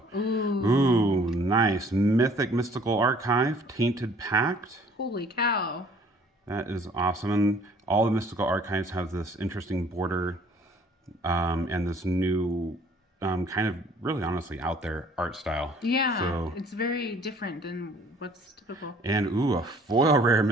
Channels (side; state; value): both; normal; correlation 0.56